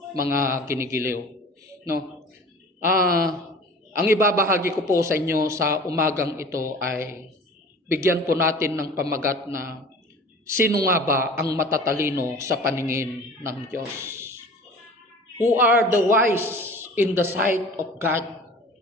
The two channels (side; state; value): both; normal; correlation 0.42